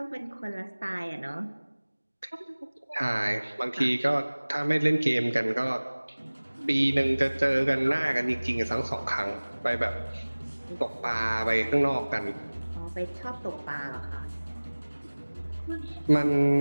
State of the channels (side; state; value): both; inverted; correlation -1.00